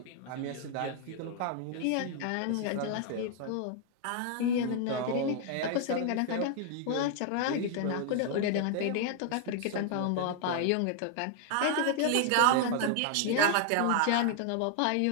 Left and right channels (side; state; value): both; different; correlation 0.00